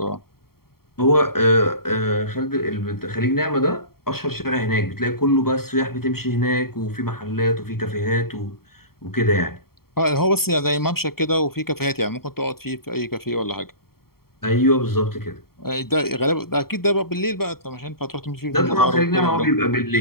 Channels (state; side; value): late; right; 0.94 ms